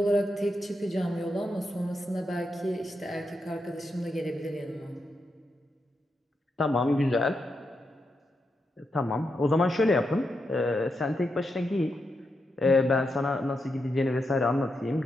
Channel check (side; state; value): both; normal; correlation 0.85